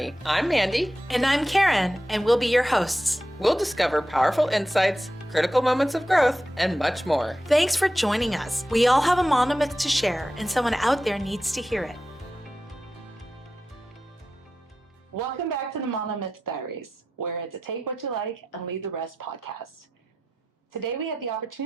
I'm Mandy. And I'm Karen, and we'll be your hosts. We'll discover powerful insights, critical moments of growth, and much more. Thanks for joining us. We all have a monomyth to share, and someone out there needs to hear it. Welcome back to the Monomyth Diaries, where it's a take what you like and leave the rest podcast. Today we had the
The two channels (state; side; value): normal; both; correlation 0.91